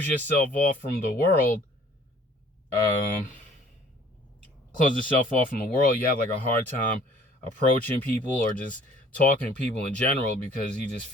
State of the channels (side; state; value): both; normal; correlation 0.55